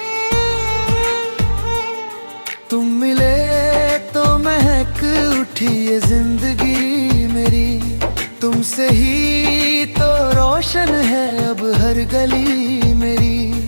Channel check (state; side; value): inverted; both; correlation -1.00